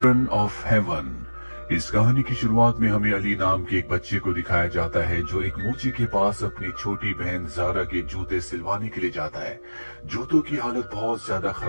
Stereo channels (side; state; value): both; inverted; correlation -1.00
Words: Children of haven. इस कहानी की शुरुआत में हमें अली नाम के एक बच्चे को दिखाया जाता है जो एक मोची के पास अपनी छोटी बहन जारा के जूते सिलवाने के लिए जाता है। जूतों की हालत बहुत ज्यादा